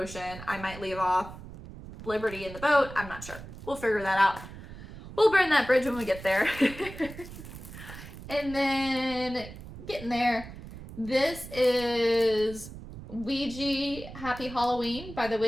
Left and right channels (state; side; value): noise; right; rumble, 14 dB below the sound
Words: I might leave off Liberty in the boat. I'm not sure. We'll figure that out. We'll burn that bridge when we get there. And then getting there, this is Ouija Happy Halloween by the